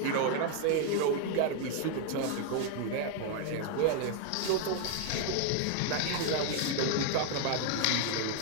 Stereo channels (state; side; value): different; both; correlation 0.00